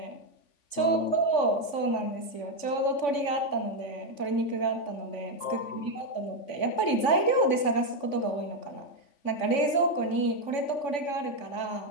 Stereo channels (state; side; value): late; right; 3.5 ms